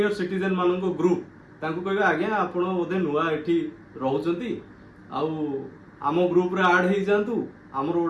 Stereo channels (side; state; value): both; identical; correlation 1.00